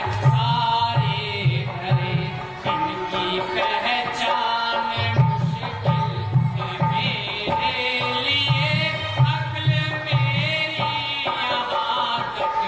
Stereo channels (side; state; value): both; identical; correlation 1.00